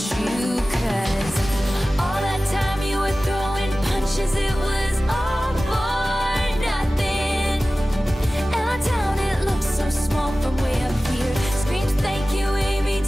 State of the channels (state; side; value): normal; both; correlation 0.97